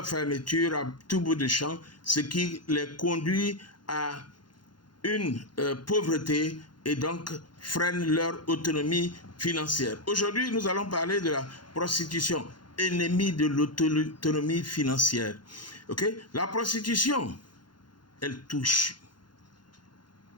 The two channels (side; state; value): right; late; 0.71 ms